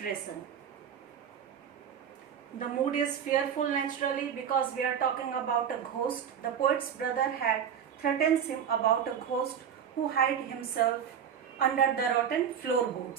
The mood is fearful naturally because we are talking about a ghost. The poet's brother had threatened him about a ghost who hid himself under the rotten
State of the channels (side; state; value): left; quieter; 8.2 dB